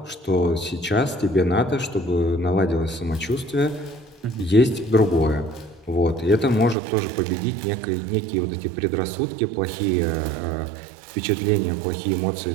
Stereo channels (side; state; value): left; drops out; at 6.8 s